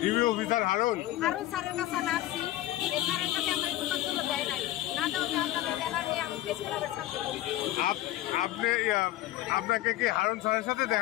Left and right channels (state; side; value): quieter; right; 14.9 dB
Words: ডিবি অফিসার হারুন স্যারের কাছে আমি আসছি। এই স্যারের কাছে আমার কোনো জন্য দেয় নাই, না দেওয়া আপনাদের ব্যানার নিয়ে আমি প্রেস ক্লাবের ছাত্র। আপনি আপনাকে কি হারুন স্যারের সাথে